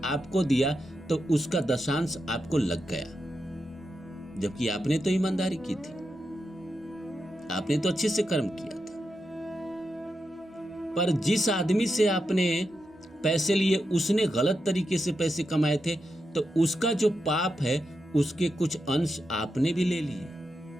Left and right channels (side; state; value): both; normal; correlation 0.87